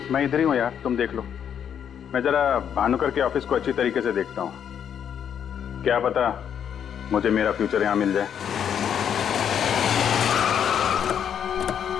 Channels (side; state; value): right; quieter; 8.6 dB